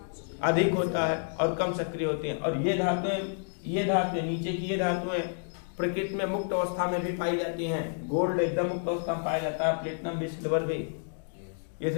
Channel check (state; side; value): silent; right; digital silence